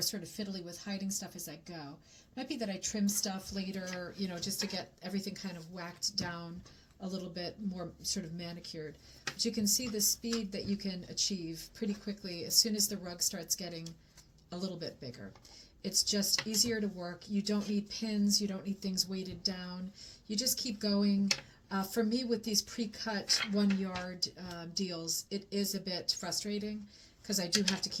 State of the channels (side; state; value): both; identical; correlation 1.00